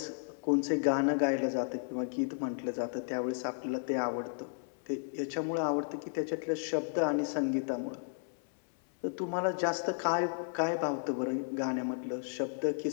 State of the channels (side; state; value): right; silent; 55 dB below the other